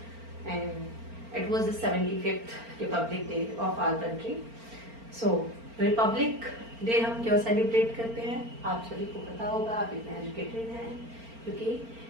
and it was the 75th republic day of our country. So republic day हम क्यों सेलिब्रेट करते हैं आप सभी को पता होगा, आप इतने एजुकेटेड हैं,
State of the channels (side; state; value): left; late; 4.4 ms